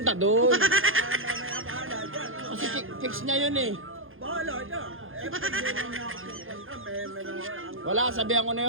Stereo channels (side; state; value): left; late; 0.59 ms